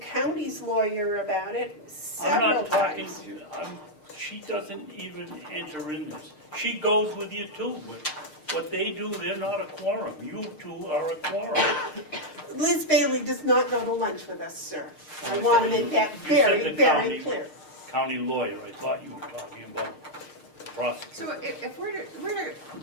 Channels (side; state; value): right; late; 6.6 ms